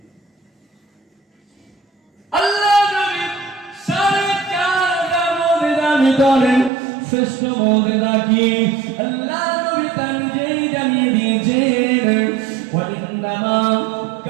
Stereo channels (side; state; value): left; drops out; at 6.7 s